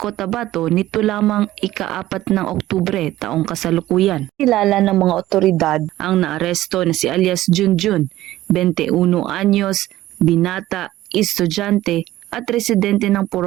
nito lamang ika-4 ng Oktubre taong kasalukuyan. Kilala ng mga otoridad ang naaresto na si alias Junjun, 21 anyos, binata, estudyante at residente ng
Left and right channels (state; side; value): quieter; left; 15.2 dB